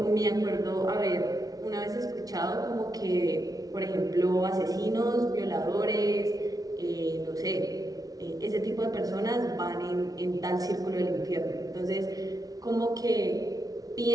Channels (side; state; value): left; late; 0.18 ms